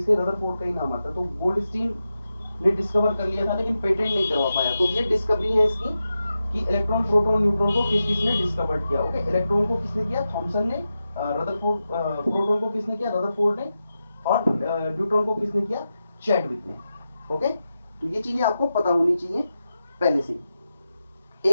रदरफोर्ड का ही नाम आता है। तो गोल्डस्टीन ने डिस्कवर कर लिया था लेकिन पेटेंट नहीं करवा पाया। तो ये डिस्कवरी है इसकी कि इलेक्ट्रॉन प्रोटॉन न्यूट्रॉन को किस किसने डिस्कवर किया। ओके, इलेक्ट्रॉन को किसने किया? थॉमसन ने। रदरफोर्ड, प्रोटॉन को किसने किया? रदरफोर्ड ने। और न्यूट्रॉन को किसने किया? चैडविक ने। ओके, तो ये चीजें आपको पता होनी चाहिए पहले से।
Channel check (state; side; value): inverted; both; correlation -0.90